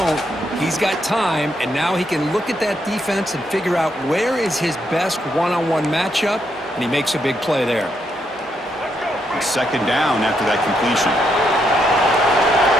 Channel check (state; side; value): normal; both; correlation 0.78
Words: he's got time, and now he can look at that defense and figure out where is his best one-on-one matchup, and he makes a big play there. It's 2nd down after that completion.